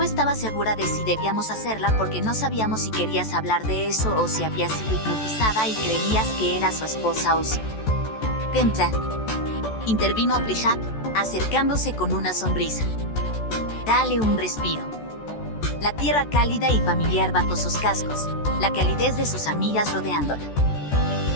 estaba segura de si debíamos hacerla porque no sabíamos si querías hablar de eso o si habías sido hipnotizada y creías que era su esposa o si... «Entra», intervino Plishat, acercándose con una sonrisa. «Dale un respiro». La tierra cálida y familiar bajo sus cascos, la calidez de sus amigas rodeándola.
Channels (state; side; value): late; right; 14 ms